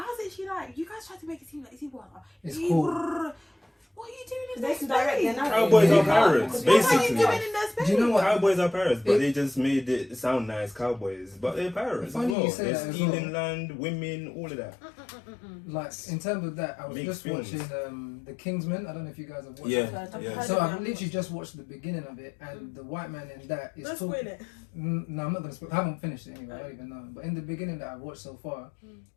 was actually like, you guys try to make it seem like it's cool. What are you doing in their space? Cowboys are pirates, basically. What are you doing in their space? Do you know what? Cowboys are pirates, but they just made it sound nice, cowboys. But they're pirates as well. They're stealing land, women, all of that. Like, in terms of that, I was just watching The Kingsman. I don't know if you guys have watched it. Yeah. So I've literally just watched the beginning of it, and the white man in that is talking... Don't spoil it. No, I'm not going to spoil it. I haven't finished it anyway, I don't even know. But in the beginning that I've watched so far,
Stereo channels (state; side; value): drops out; right; at 12.4 s